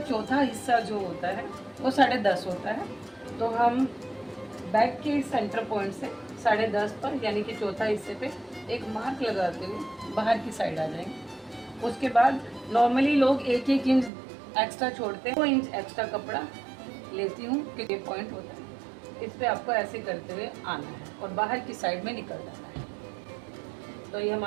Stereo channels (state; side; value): drops out; left; at 14.1 s